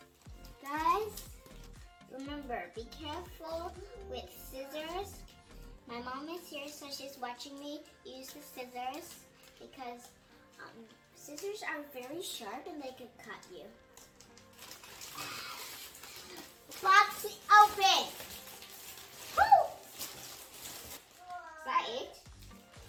Guys, remember, be careful with scissors. My mom is here, so she's watching me use the scissors because scissors are very sharp and they could cut you. Box open! Woo! Is that it?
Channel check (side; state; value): both; identical; correlation 1.00